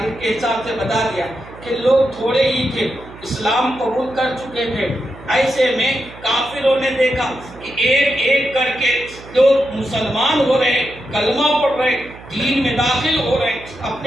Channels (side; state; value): right; noise; hum, 18 dB below the sound